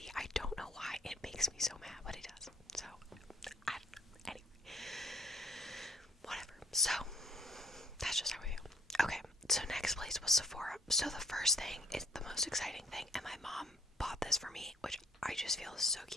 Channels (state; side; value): normal; both; correlation 0.60